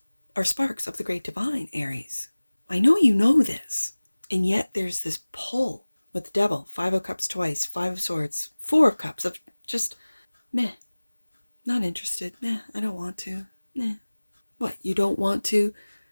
are sparks of the Great Divine, Aries. I know you know this. And yet there's this pull with the Devil. Five of Cups twice, Five of Swords, Four of Cups of just, meh, not interested. Meh, I don't want to. Meh. What, you don't want to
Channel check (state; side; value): inverted; both; correlation -1.00